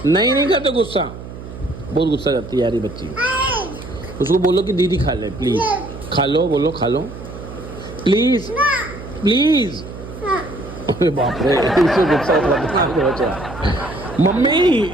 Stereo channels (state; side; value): noise; right; hum, 13 dB below the sound